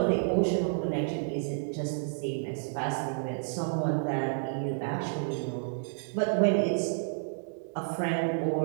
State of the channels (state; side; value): silent; left; digital silence